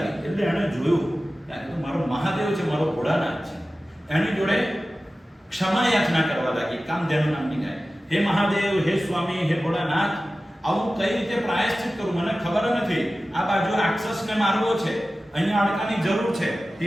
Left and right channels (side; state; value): both; normal; correlation 0.95